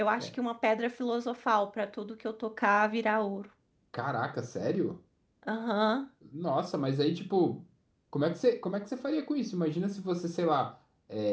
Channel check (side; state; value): both; identical; correlation 1.00